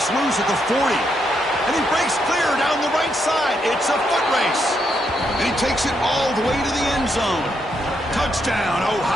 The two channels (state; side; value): normal; both; correlation 0.79